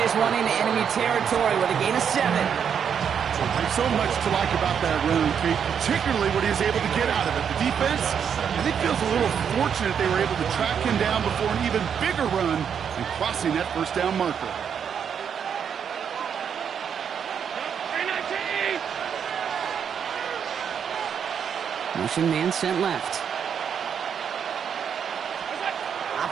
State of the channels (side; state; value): left; quieter; 7.6 dB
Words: one into enemy territory with a gain of 7. There's so much to like about that run, Kate, particularly what he was able to get out of it. The defense, I think, feels a little fortunate they were able to track him down before an even bigger run and crossing that 1st down marker. Motion man sent left.